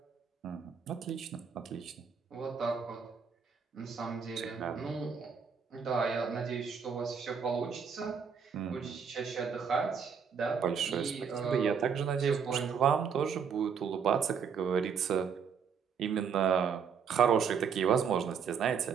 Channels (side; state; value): left; quieter; 6.6 dB